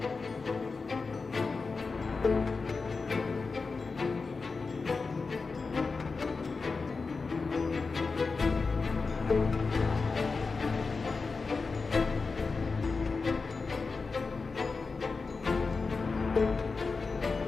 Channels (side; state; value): right; quieter; 4.3 dB